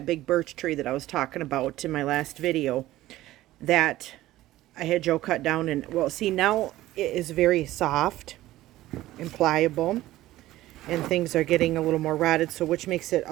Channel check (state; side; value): quieter; left; 15.7 dB